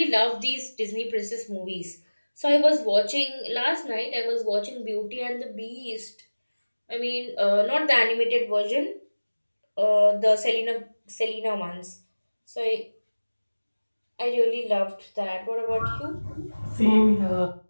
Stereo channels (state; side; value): inverted; both; correlation -1.00